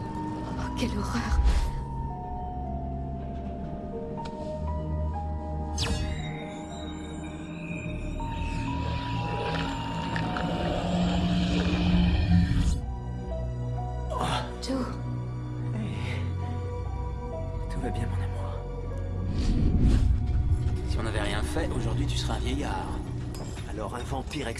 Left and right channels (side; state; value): both; identical; correlation 1.00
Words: Oh, quelle horreur! Joe? Tout va bien, mon amour. Si on n'avait rien fait, aujourd'hui tu serais un vieillard. Alors un vampire